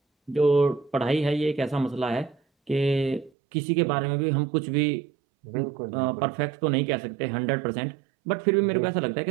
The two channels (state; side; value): drops out; left; at 3.3 s